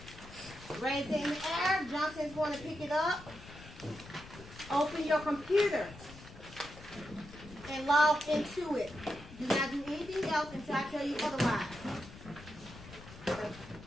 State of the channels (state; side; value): noise; left; rumble, 17 dB below the sound